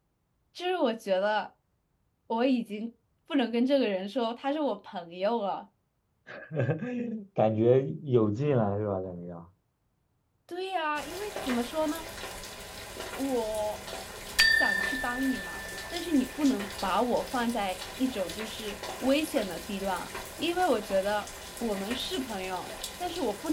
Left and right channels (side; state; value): both; identical; correlation 1.00